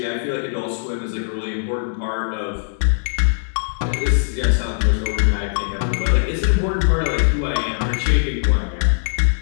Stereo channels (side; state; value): right; silent; 65 dB below the other